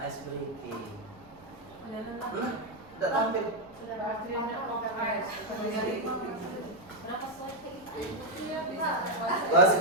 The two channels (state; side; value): noise; right; rumble, 26 dB below the sound